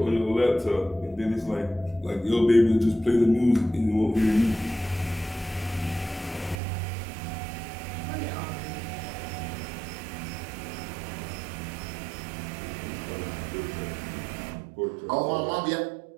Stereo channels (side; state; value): left; drops out; at 6.6 s